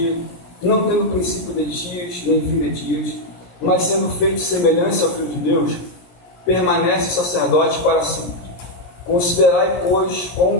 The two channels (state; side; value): late; right; 17 ms